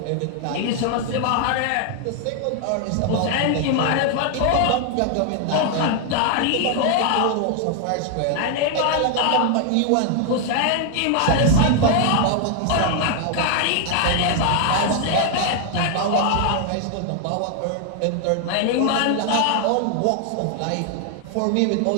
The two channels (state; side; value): different; both; correlation 0.00